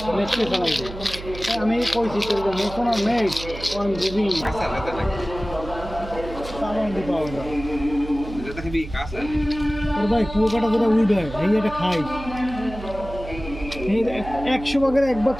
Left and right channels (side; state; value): right; noise; hum, 12 dB below the sound